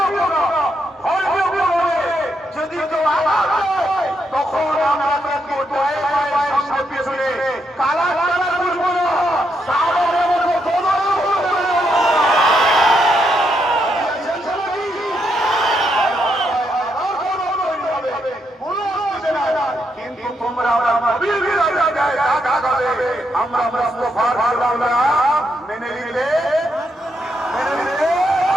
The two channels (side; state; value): both; normal; correlation 0.79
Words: গুণ। ধর্মীয় গুণ হলে যদি কেউ আঘাত হয় তখন আমরা তাকে পায়ে পায়ে সামনে পেছনে কালা কালা করবো না, সাগরের মতো দোদল করবো না। কিন্তু তোমরা আমরা মুস্তাফার মেনে নিলে